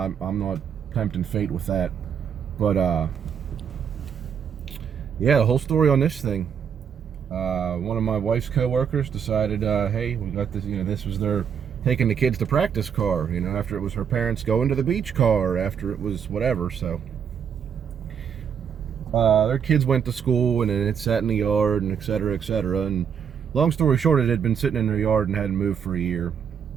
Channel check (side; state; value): left; quieter; 7.6 dB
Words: not tempting fate with that. But yeah, the whole story on this thing. One of my wife's co-workers decided, hey, we got this. This was their taking the kids to practice car. After it was her parents going to the beach car. After it was whatever. So their kids went to school, and then it sat in the yard, and et cetera, et cetera. And long story short, it had been sitting in their yard and hadn't moved for a year.